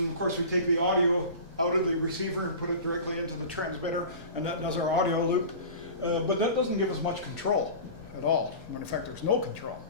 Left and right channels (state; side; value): inverted; both; correlation -0.35